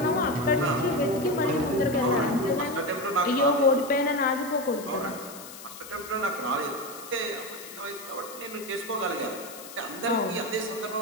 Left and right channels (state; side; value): noise; left; hiss, 14 dB below the sound